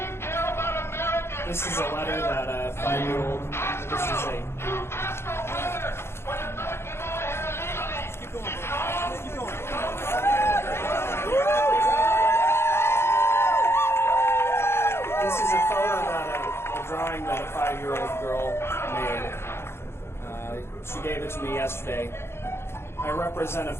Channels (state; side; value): late; right; 0.12 ms